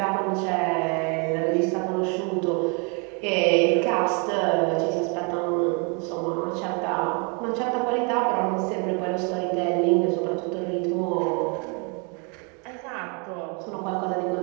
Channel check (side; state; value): left; quieter; 34.6 dB